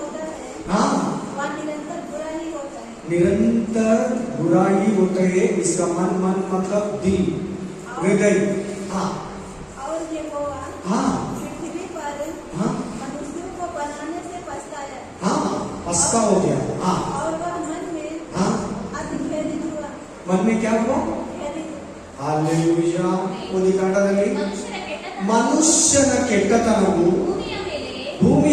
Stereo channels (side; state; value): both; identical; correlation 1.00